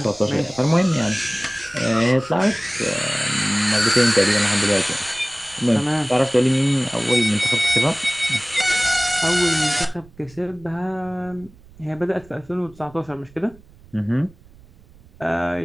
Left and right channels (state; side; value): noise; right; rumble, 25 dB below the sound